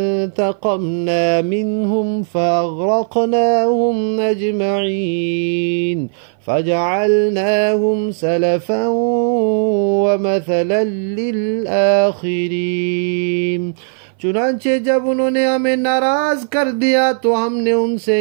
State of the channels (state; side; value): silent; left; 59 dB below the other